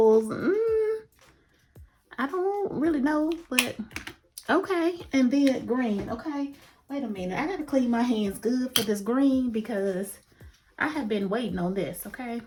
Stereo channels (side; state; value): both; identical; correlation 1.00